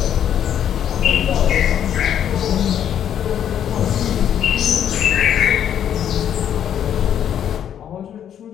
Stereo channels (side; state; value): right; quieter; 9.6 dB